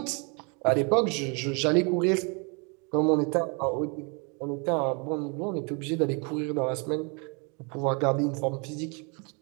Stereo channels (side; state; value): left; quieter; 33.8 dB